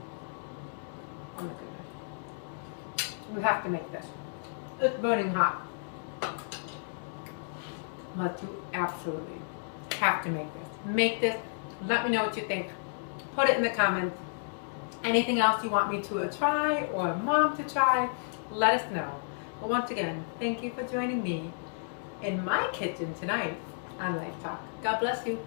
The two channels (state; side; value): silent; right; digital silence